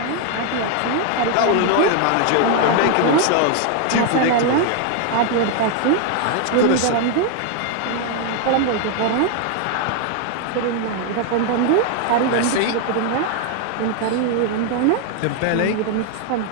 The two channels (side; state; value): both; different; correlation 0.00